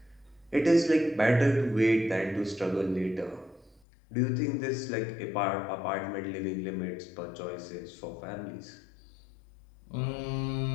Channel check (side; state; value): right; drops out; at 3.8 s